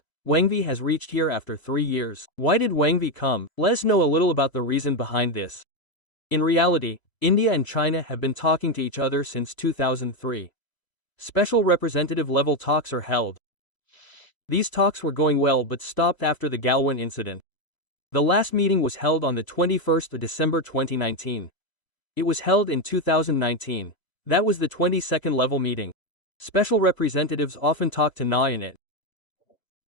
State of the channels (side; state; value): right; late; 1.0 ms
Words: Wang Yi has reached here after 3 years. Why did Wang Yi come? Let us know a little about the reason behind this. In reality, India and China have been talking to each other since 2003. Special representative level talks are held. These talks were going well but stopped after the Galwan incident. The last meeting was held on the 21st of December 2019. It was held in 2019. That was the 22nd level meeting. Special representatives often talk to NA in it.